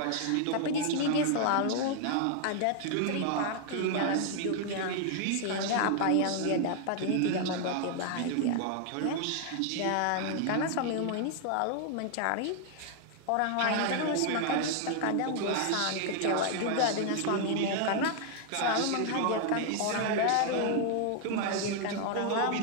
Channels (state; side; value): different; both; correlation 0.00